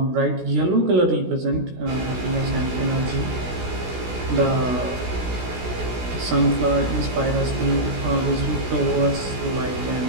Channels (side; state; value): left; late; 16 ms